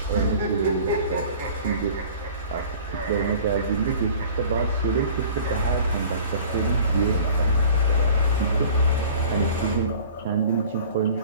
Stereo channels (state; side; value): inverted; both; correlation -0.45